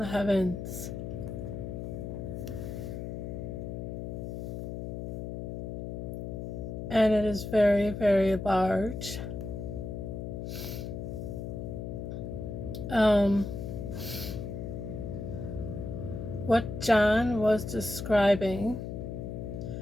heavens. And it is very, very large. What John was describing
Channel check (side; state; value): left; noise; hum, 6 dB below the sound